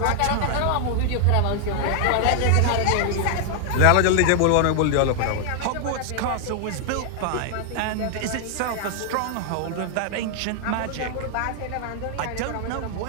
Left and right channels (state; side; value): different; both; correlation 0.00